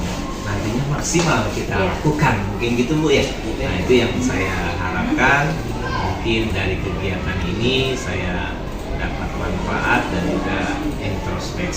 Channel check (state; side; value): identical; both; correlation 1.00